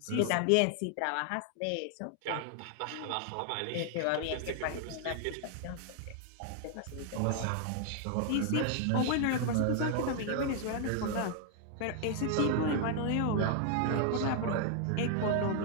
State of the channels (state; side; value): different; both; correlation 0.00